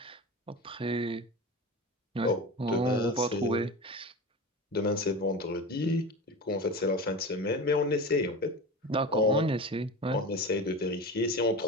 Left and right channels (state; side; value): normal; both; correlation 0.29